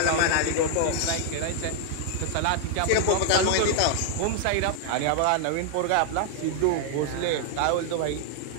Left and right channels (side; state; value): both; different; correlation 0.00